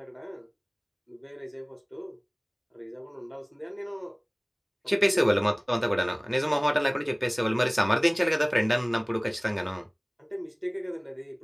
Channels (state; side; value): identical; both; correlation 1.00